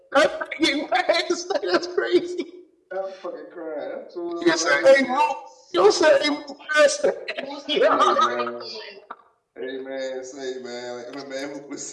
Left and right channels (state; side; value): identical; both; correlation 1.00